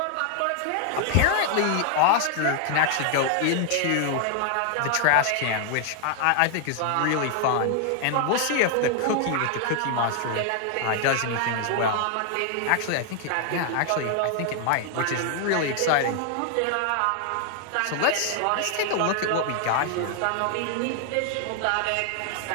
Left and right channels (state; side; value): different; both; correlation 0.00